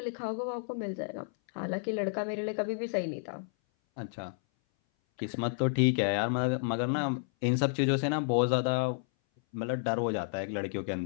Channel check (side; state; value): right; silent; 57 dB below the other